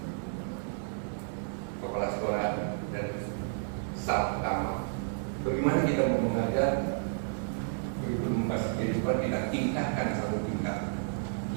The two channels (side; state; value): left; silent; digital silence